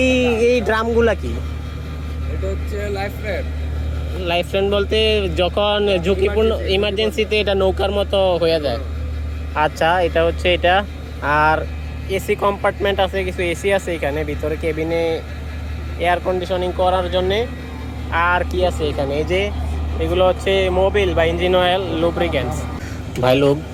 ড্রামগুলা কি? এটা হচ্ছে লাইফ ফ্রেন্ড বলতে যখন ঝুঁকিপূর্ণ ইমার্জেন্সিতে এটা নৌকার মতো হয়ে যায়। আচ্ছা, এটা হচ্ছে এটা। আর এসি কম্পার্টমেন্ট আছে, কিছু এসি আছে এখানে ভিতরে কেবিনে এয়ার কন্ডিশনিং করার জন্যে। আর কি আছে এখানে? এই যে এগুলো হচ্ছে মোবিল বা ইঞ্জিন অয়েল, লুব্রিকেন্টস। ভাই লোক,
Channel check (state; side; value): identical; both; correlation 1.00